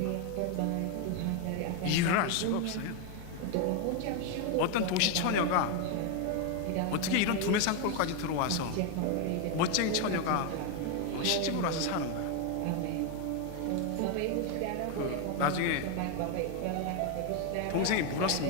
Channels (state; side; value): different; both; correlation 0.01